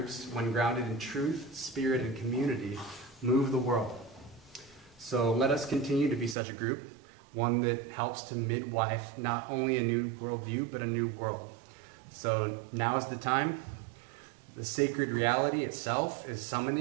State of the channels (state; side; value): drops out; left; at 6.4 s